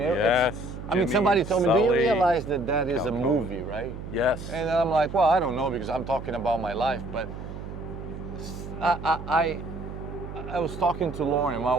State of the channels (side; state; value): right; noise; hum, 10 dB below the sound